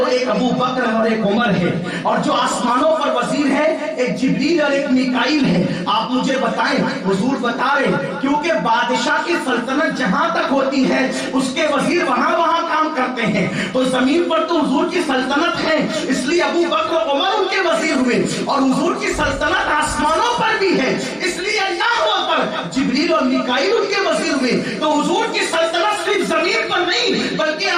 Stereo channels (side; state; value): both; identical; correlation 1.00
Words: ایک ابو بکر اور ایک عمر ہے، اور جو آسمانوں پر وزیر ہے ایک جبریل اور ایک میکائیل ہے۔ آپ مجھے بتائیں، حضور بتا رہے کیونکہ بادشاہ کی سلطنت جہاں تک ہوتی ہے اس کے وزیر وہاں کام کرتے ہیں، تو زمین پر تو حضور کی سلطنت ہے، اس لیے ابو بکر اور عمر ان کے وزیر ہوئے، اور حضور کی سلطنت آسمانوں پر بھی ہے، اس لیے اللہ پر جبریل اور میکائیل ان کے وزیر ہوئے۔ تو حضور کی سلطنت صرف زمین پر نہیں بلکہ